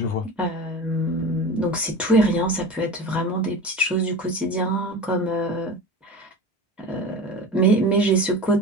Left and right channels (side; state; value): both; normal; correlation 0.32